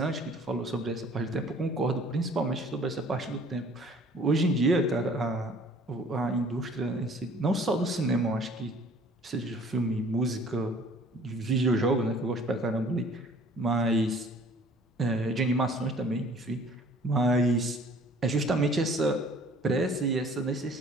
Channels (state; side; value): normal; both; correlation 0.53